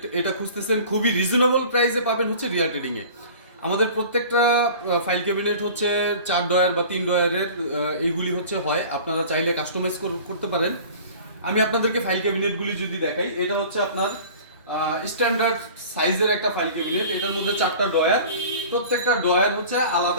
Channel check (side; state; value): both; inverted; correlation -0.42